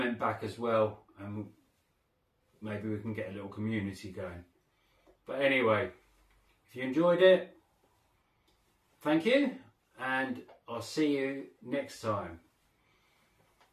back as well, and maybe we can get a little community going. But anyway, if you enjoyed it, thank you, and I'll see you next time.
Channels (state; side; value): identical; both; correlation 1.00